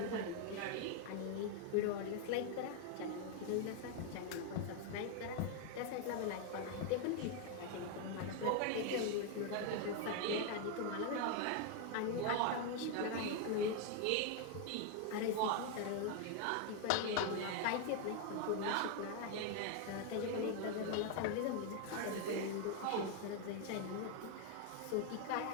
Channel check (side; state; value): both; different; correlation 0.01